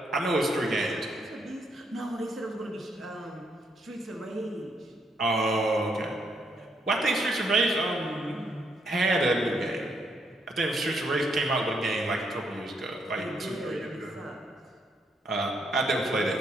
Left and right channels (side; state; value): both; normal; correlation 0.75